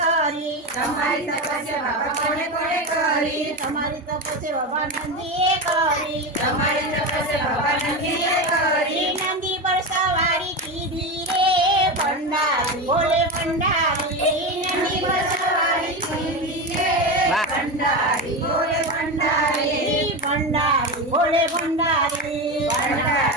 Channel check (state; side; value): normal; both; correlation 0.19